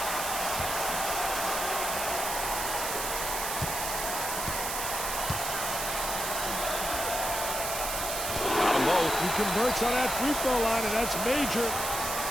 He converts on that free throw line, and that's major.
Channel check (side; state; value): right; noise; hiss, 3 dB below the sound